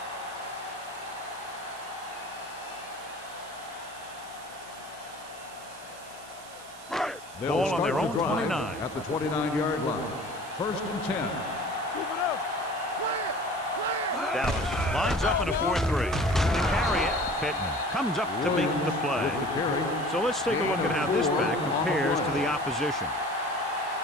Ball on their own 29. At the 29-yard line. 1st and 10. Move it up. Dallas lines up in a 4-3. To carry it, Pittman comes up to make the play. So let's take a look at how this back compares to the opposition.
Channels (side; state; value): right; noise; hiss, 19 dB below the sound